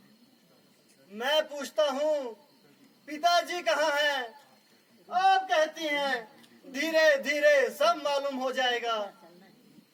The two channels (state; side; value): identical; both; correlation 1.00